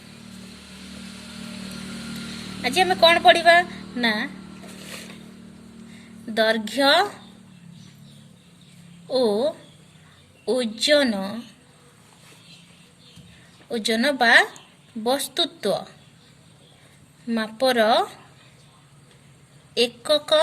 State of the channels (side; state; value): both; identical; correlation 1.00